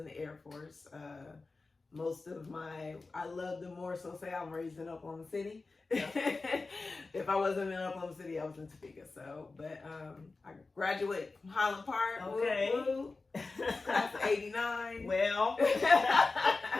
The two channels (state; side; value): quieter; right; 3.7 dB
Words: the Air Force. I love to more so say I'm raised in Oklahoma City. Yeah. If I wasn't in Oklahoma City, I was in Topeka. So, but I graduated from Highland Park. Okay. Woo, class of '89. Well,